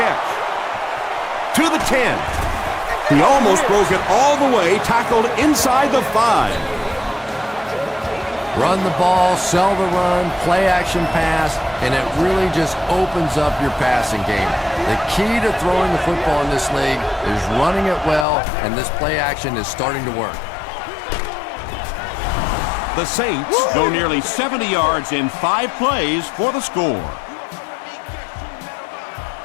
To the 10. He almost broke it all the way, tackled inside the 5. Run the ball, sell the run, play action pass, and it really just opens up your passing game. The key to throwing the football in this league is running it well, and this play action is starting to work. The Saints go nearly 70 yards in 5 plays for the score.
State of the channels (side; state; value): right; drops out; at 18.2 s